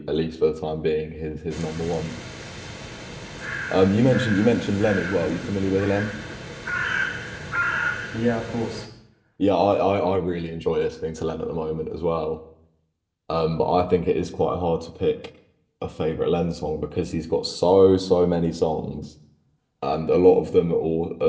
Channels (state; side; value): identical; both; correlation 1.00